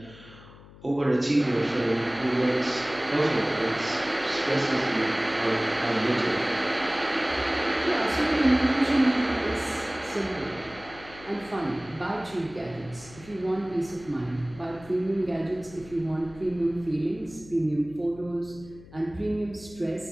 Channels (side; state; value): left; noise; hum, 20 dB below the sound